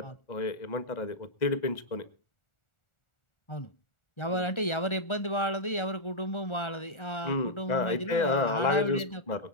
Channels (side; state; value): right; late; 1.4 ms